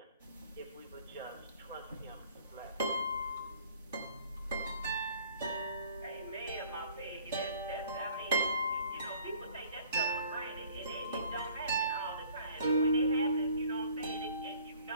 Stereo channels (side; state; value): both; inverted; correlation -0.54